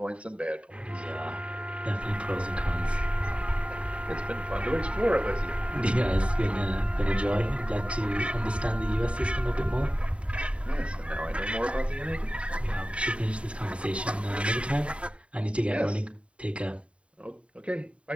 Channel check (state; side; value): late; left; 0.061 ms